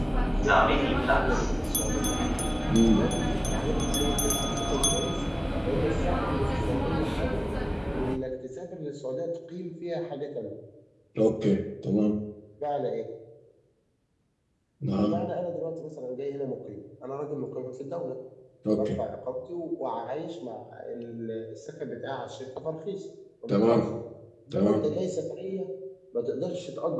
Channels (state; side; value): identical; both; correlation 1.00